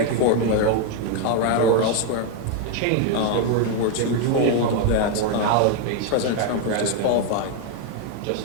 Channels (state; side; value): different; both; correlation 0.01